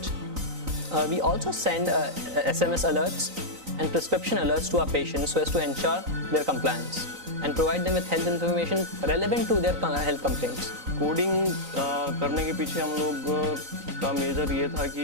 We also send SMS alerts and prescription alerts to our patients so as to ensure their compliance and provide them with health information relevant to their health complaints. Coding करने के पीछे हम लोग का major ये था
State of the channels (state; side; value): late; left; 3.9 ms